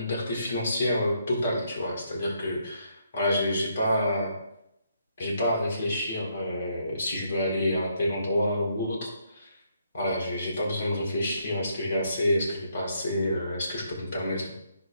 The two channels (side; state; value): both; inverted; correlation -0.74